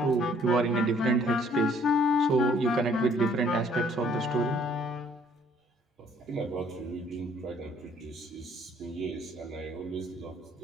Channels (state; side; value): normal; both; correlation 0.61